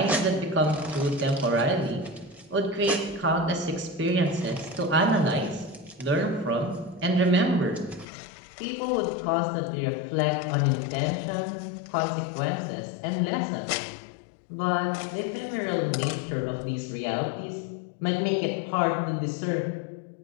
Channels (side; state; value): right; drops out; at 8.1 s